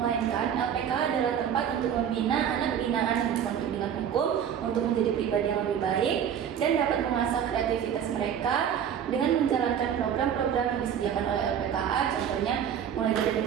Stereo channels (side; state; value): left; quieter; 8.7 dB